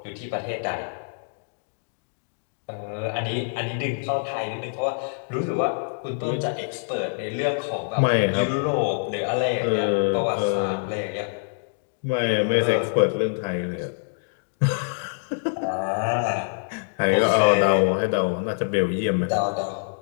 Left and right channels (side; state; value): right; silent; digital silence